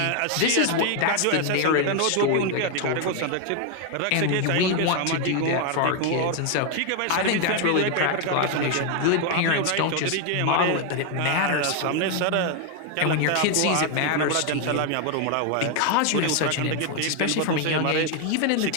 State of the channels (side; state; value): both; different; correlation 0.01